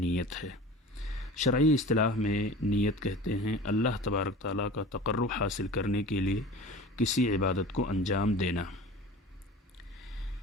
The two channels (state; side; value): normal; both; correlation 0.38